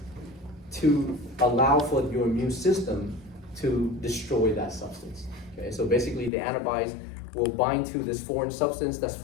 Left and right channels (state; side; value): drops out; right; at 6.3 s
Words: to allow for your immune system to destroy that substance. Okay? So basically the antibodies will bind to this foreign substance that's